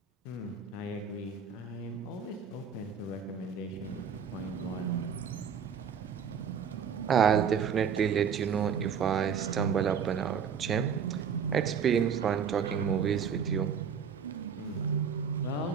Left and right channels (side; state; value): left; quieter; 7.0 dB